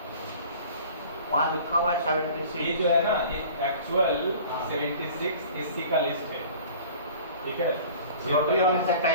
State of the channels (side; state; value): both; inverted; correlation -0.45